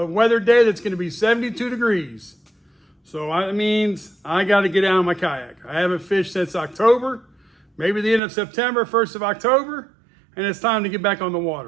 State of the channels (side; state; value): left; drops out; at 8.2 s